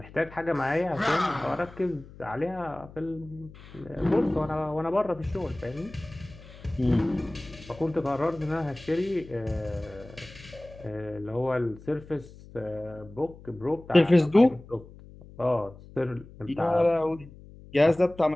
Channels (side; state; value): left; noise; hum, 19 dB below the sound